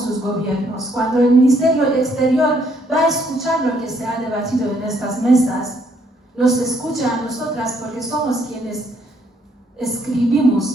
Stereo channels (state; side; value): normal; both; correlation 0.69